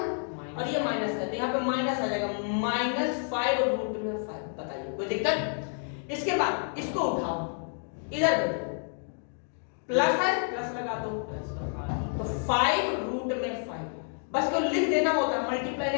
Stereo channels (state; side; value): silent; right; 58 dB below the other